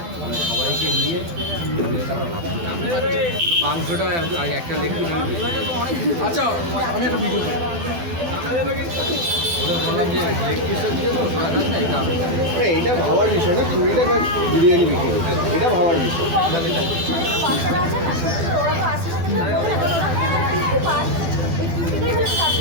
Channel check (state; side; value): late; left; 12 ms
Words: মানে সবাইকে নিয়ে মাংসটা একটা লেগ পিস আমি আচ্ছা আমি একটা ভিডিও ওদের বললাম যে লেগ পিসটা দিয়ে তো ওরা খাস না, এটা আমি এটা ভাবার বিষয় না, 20 টাকা বিরিয়ানি বিক্রি করছে, এটা ভাবার বিষয়।